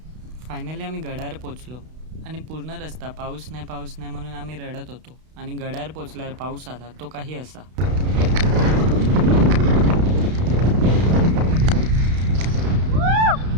फायनली आम्ही गडावर पोचलो आणि पूर्ण रस्ता पाऊस नाही म्हणून आम्ही रडत होतो. आणि गडावर पोचल्यावर पाऊस आला, तो काही असा.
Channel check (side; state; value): left; late; 32 ms